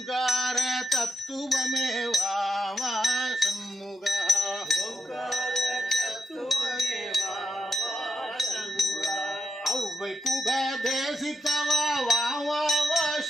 தத்துவமே வாவா சண்முகா ஓங்கார தத்துவமே வாவா சண்முகா அவ்வை புகதேசித்தவா வாவா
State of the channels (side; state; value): both; normal; correlation 0.84